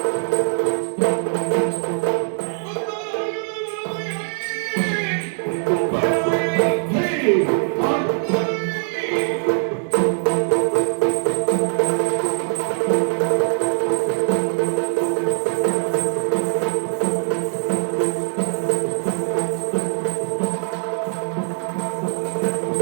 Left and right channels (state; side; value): silent; left; 64 dB below the other